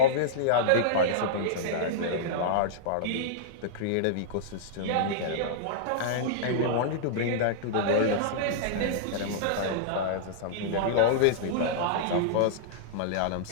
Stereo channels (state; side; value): different; both; correlation -0.02